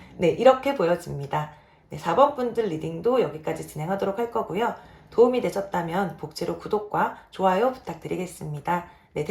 네, 이렇게 보여집니다. 네, 4번 분들 리딩도 여기까지 진행하도록 할 거고요. 도움이 되셨다면 복지로 구독과 좋아요 부탁드리겠습니다. 네,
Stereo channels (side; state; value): both; identical; correlation 1.00